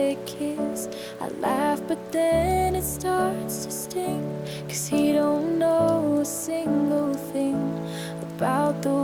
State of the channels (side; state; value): both; identical; correlation 1.00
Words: kiss. I laugh but then it starts to sting, 'cause he don't know a single thing about the